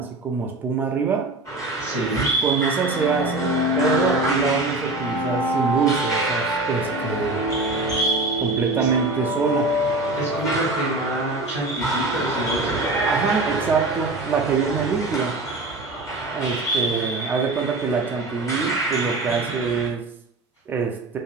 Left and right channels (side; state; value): left; quieter; 3.0 dB